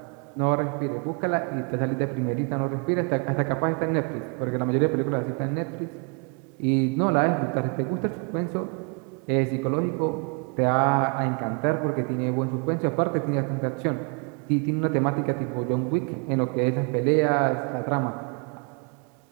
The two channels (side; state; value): left; quieter; 36.6 dB